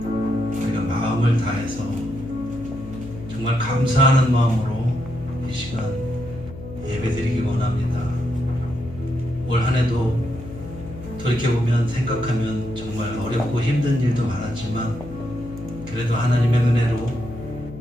우리가 마음을 다해서 정말 감사하는 마음으로 이 시간 예배드리기 원합니다. 올 한 해도 돌이켜보면 생각하면 정말 어렵고 힘든 일도 많았지만 그래도 하나님의 은혜로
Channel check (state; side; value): noise; left; hum, 13 dB below the sound